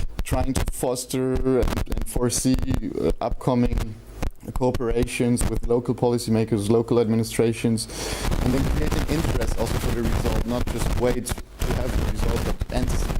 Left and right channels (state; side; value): identical; both; correlation 1.00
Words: trying to foster and foresee upcoming cooperations with local policymakers, local administrations, and then create an interest also for the result, not just wait to have the result, but